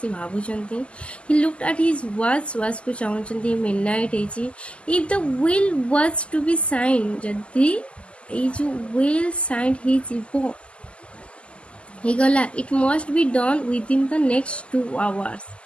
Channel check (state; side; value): late; right; 0.054 ms